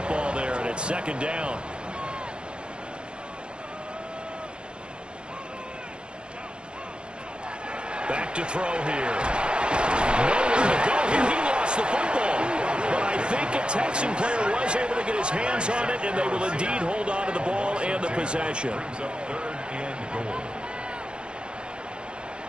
there, and it's 2nd down. Back to throw here. Nowhere to go here. He lost the football. But I think a Texan player was able to get his hands on it, and they will indeed hold on to the ball and the possession. Brings up 3rd and goal.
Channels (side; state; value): left; late; 0.053 ms